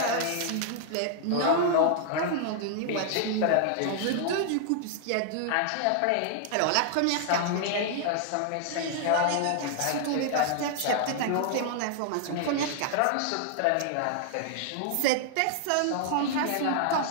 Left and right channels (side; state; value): both; different; correlation -0.01